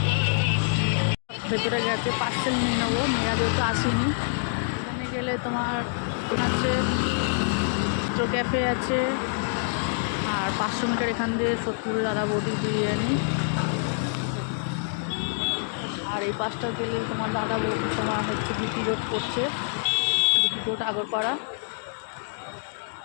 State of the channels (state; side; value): silent; right; digital silence